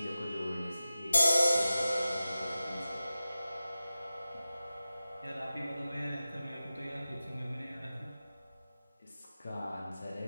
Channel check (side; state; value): both; inverted; correlation -0.95